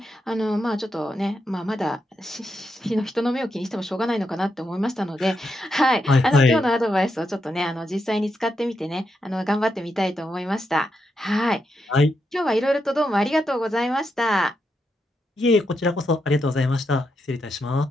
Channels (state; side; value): normal; both; correlation 0.83